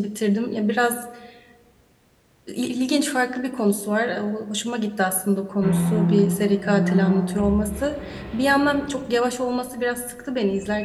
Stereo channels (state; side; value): identical; both; correlation 1.00